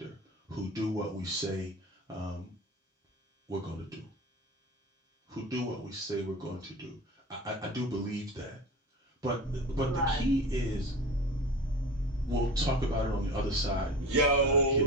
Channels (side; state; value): both; normal; correlation 0.34